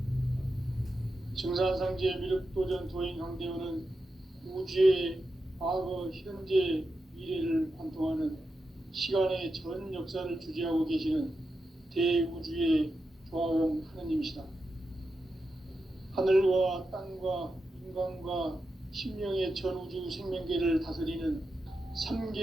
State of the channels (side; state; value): both; normal; correlation 0.89